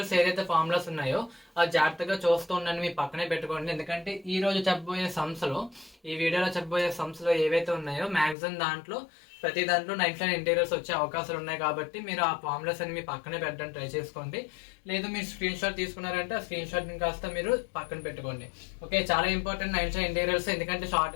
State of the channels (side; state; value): right; drops out; at 8.3 s